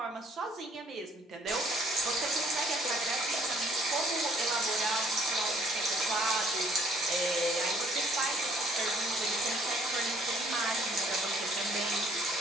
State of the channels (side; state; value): both; normal; correlation 0.61